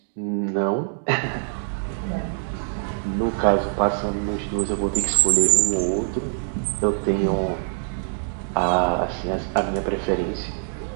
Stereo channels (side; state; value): left; silent; digital silence